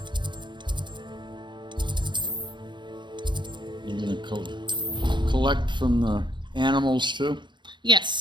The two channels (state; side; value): late; left; 0.23 ms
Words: You're going to collect from the animals too?